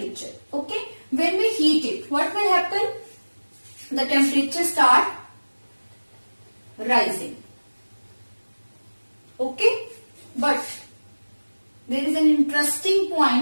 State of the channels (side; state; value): both; inverted; correlation -1.00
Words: Okay. When we heat it, what will happen? The temperature start rising. Okay. But there is an interesting